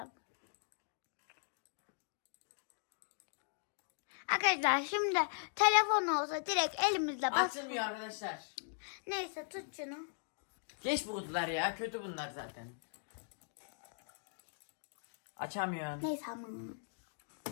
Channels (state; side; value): silent; right; digital silence